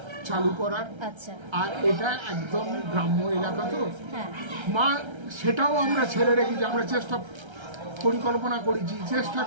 চালু করার। আচ্ছা। আর এটা একদম গ্রাম্য এলাকা, তো হ্যাঁ মা সেটাও আমরা ছেড়ে রেখেছি। আমরা পরিকল্পনা করেছি, চেষ্টা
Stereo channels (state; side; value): late; left; 1.3 ms